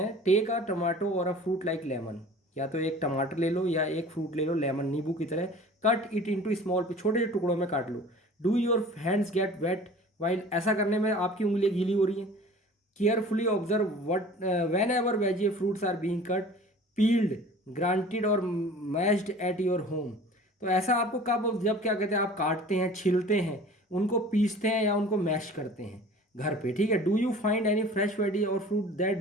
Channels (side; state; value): both; normal; correlation 0.44